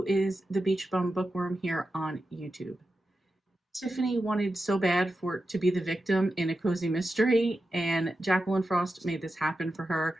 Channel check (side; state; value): both; normal; correlation 0.91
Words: is the Beach Bum Bookworm here on YouTube. Tiffany wanted so bad for to be the victim in A Cozy Mystery, and Jacqueline Frost made this happen for her.